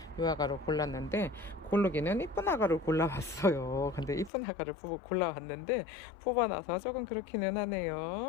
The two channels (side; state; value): right; drops out; at 4.3 s